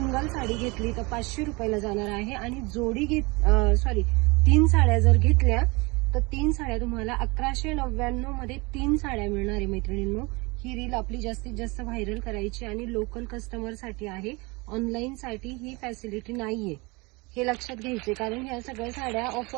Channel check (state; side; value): quieter; left; 26.2 dB